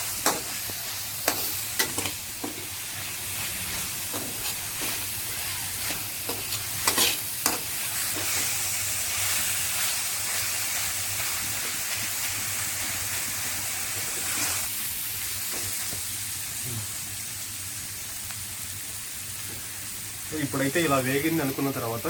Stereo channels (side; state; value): both; identical; correlation 1.00